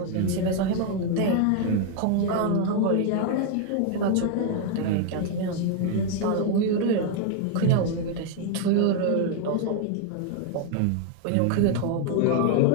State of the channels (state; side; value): different; both; correlation 0.00